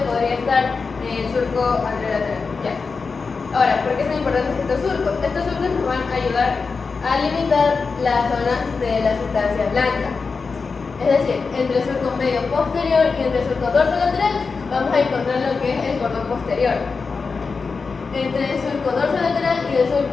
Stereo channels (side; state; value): right; quieter; 4.7 dB